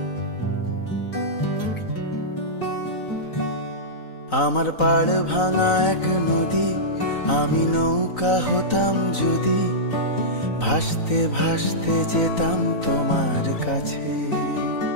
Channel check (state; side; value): late; right; 3.9 ms